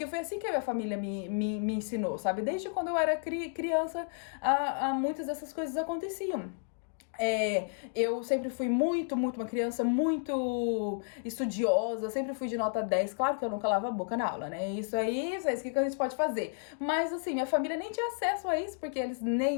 foi assim que a minha família me ensinou, sabe? Desde quando eu era criança, muitas dessas coisas aconteciam. Eu sempre fui muito uma criança muito estudiosa, sempre fui de nota 10. Claro que eu nunca lavo a boca na aula, né? Isso aí, o que a gente pode fazer? Mas assim, minha família nem tinha acesso a isso, porque eles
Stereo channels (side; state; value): right; silent; digital silence